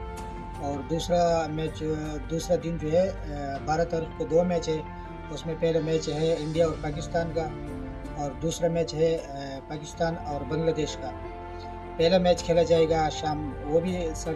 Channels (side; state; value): both; identical; correlation 1.00